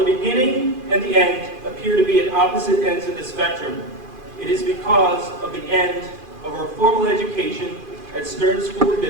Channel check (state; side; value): late; left; 2.5 ms